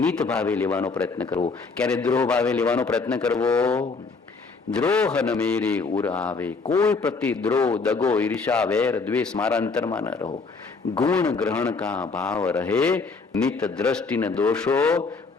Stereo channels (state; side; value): quieter; right; 4.4 dB